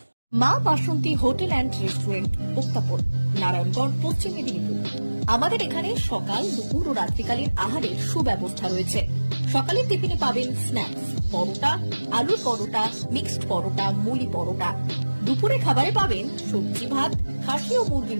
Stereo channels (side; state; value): both; inverted; correlation -1.00